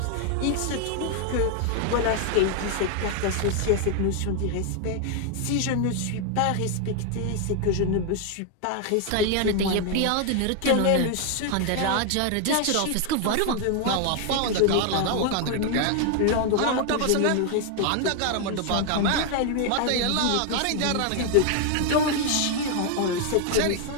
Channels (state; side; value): different; both; correlation 0.00